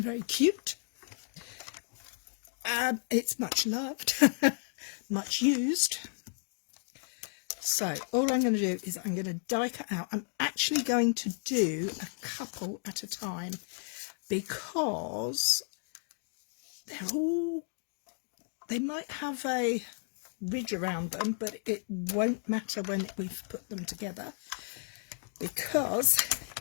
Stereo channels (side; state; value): right; silent; 56 dB below the other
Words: cute. It's much loved, much used. So all I'm going to do is I'm going to die cut out. I'm actually going to do a couple at a time because they might have a ridge around them, but it won't matter when we've put them together because